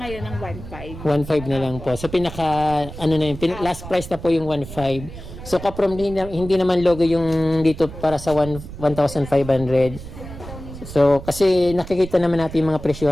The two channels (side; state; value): right; noise; rumble, 12 dB below the sound